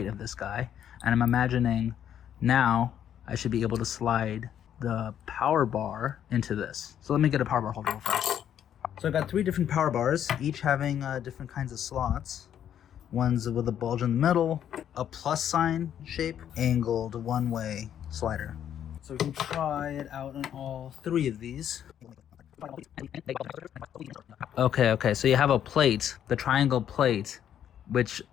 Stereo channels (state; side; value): quieter; right; 9.8 dB